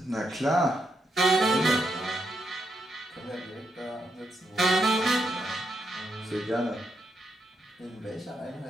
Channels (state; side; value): normal; both; correlation 0.81